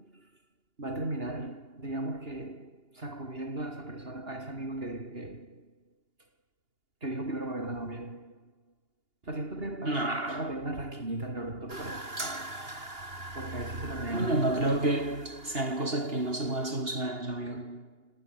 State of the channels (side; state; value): left; late; 2.8 ms